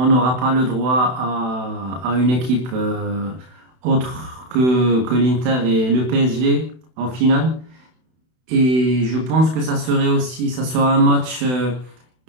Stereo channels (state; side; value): late; left; 32 ms